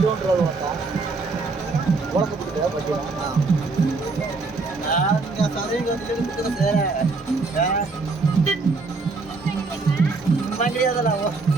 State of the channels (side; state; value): left; quieter; 3.9 dB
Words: மாட்டா உலகத்துக்கு பார்த்தீங்கன்னா நான் சதவீதம் வந்து எடுத்துக்கிறது கிடையாதுல்ல